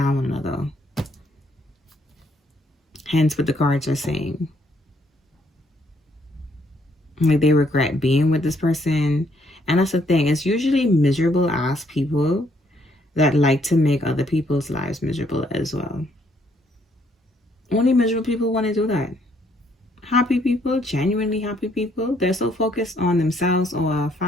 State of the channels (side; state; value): both; normal; correlation 0.69